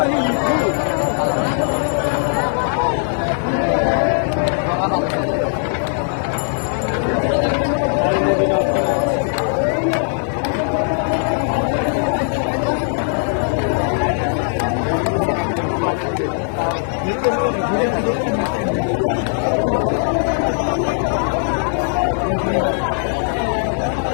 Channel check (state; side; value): silent; right; digital silence